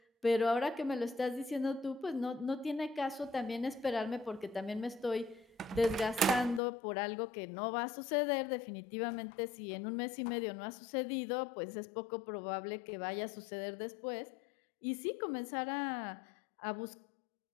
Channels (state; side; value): drops out; right; at 6.6 s